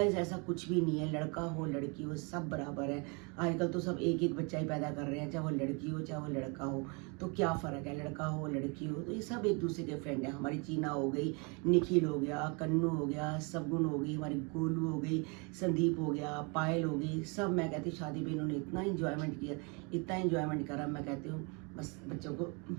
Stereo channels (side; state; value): left; quieter; 32.3 dB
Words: ऐसा कुछ भी नहीं है, लड़का हो लड़की हो सब बराबर है। आजकल तो सब एक एक बच्चा ही पैदा कर रहे हैं, चाहे वो लड़की हो चाहे वो लड़का हो, तो क्या फ़र्क है, लड़का हो लड़की हो, तो ये सब एक दूसरे के फ्रेंड है। हमारी चीना हो गई, निखिल हो गया, कन्नू हो गया, सगुन हो गई, हमारी गोलू हो गई, संदीप हो गया, पायल हो गई, सब। मैं कहती हूँ शादी में इन्होंने इतना इंजॉयमेंट किया, इतना इंजॉयमेंट करा, मैं कहती हूँ बस बच्चों को